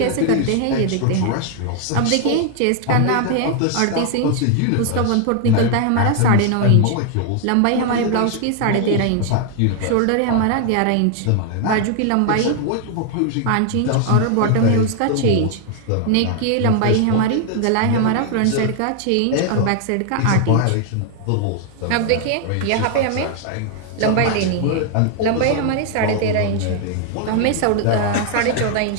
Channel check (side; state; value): both; different; correlation 0.00